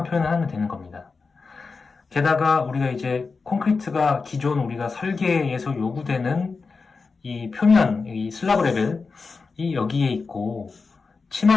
표현을 하면 되는 겁니다. 게다가 우리가 이제 콘크리트가 기존 우리가 설계에서 요구되는 이 표면, 이 슬라브 레벨이 여기에 있고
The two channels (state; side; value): quieter; right; 4.5 dB